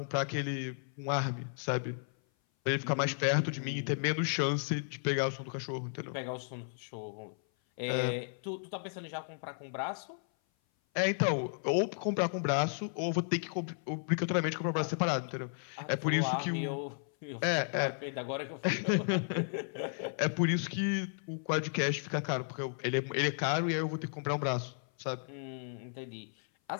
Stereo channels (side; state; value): right; silent; 55 dB below the other